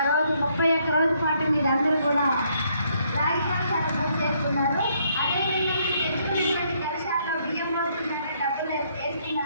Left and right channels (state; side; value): inverted; both; correlation -0.70